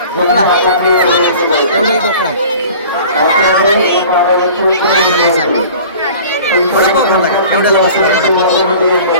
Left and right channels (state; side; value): inverted; both; correlation -0.44